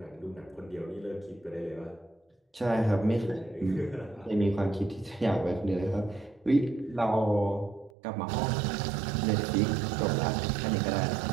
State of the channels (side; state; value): left; drops out; at 7.9 s